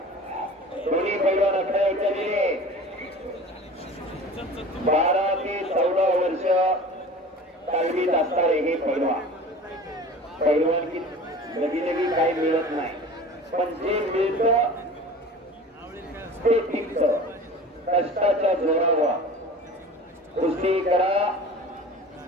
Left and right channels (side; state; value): both; normal; correlation 0.39